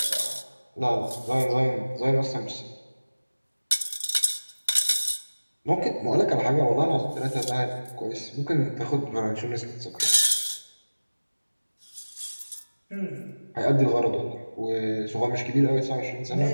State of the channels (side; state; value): both; inverted; correlation -1.00